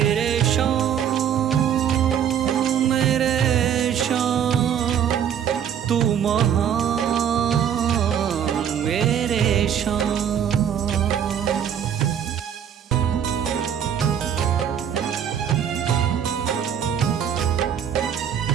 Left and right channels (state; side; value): quieter; left; 8.9 dB